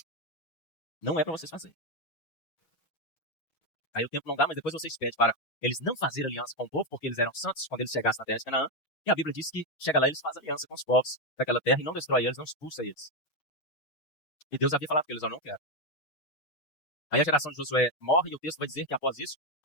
Não é para vocês fazerem. Aí o tempo não dá, mas depois vocês pedem para eles não fazerem aliança com o povo, porque eles eram santos quando eles chegassem na terra de Canaã. E a Bíblia diz que chega lá, eles fazem aliança com os povos daquela terra e não destrói eles, não expulsa eles. E Deus havia falado para eles: eu não quero. Aí a geração de Josué morre e o texto vai dizer que após isso,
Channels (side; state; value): right; late; 6.3 ms